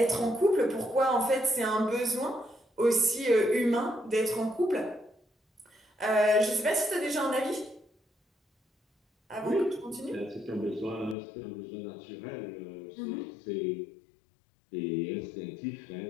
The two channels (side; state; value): right; drops out; at 11.2 s